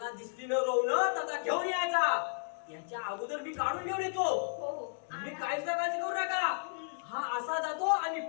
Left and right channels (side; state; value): right; silent; digital silence